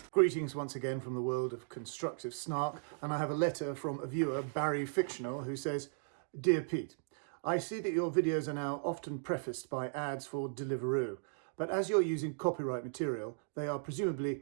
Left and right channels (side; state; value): left; silent; digital silence